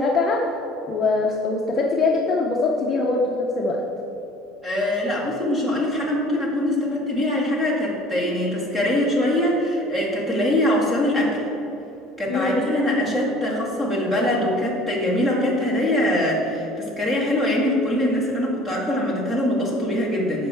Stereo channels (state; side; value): normal; both; correlation 0.50